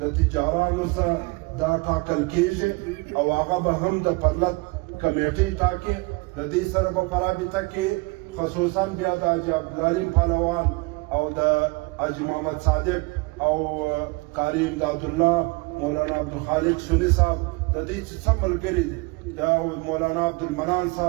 د تجارانو سره دا ټاکل کېږي او هغه به هم د پرلط کمیټې ټاکي. د دې سره به په رابطه کې خصوصا بیا د حاجي عبدالعلیم پهلوان او د حاجي محمد صادق او قاری امدادالله مولانا عبدالخالق سنی صاحب د دې چې څه ملګري دي د مولانا عبدالمنان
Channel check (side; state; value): left; quieter; 27.0 dB